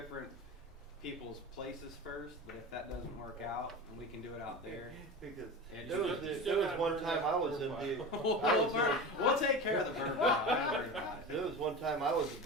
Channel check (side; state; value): both; normal; correlation 0.29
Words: people's places first, but if that doesn't work out and we can do it out there, Because And there you was, still- you there still was gotta one burn time that I was burn in pile. I was in- we'll take care of the burn pile. Don't worry about it. There was one time I was a